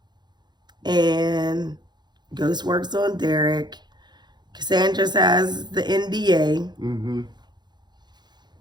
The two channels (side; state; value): left; late; 0.21 ms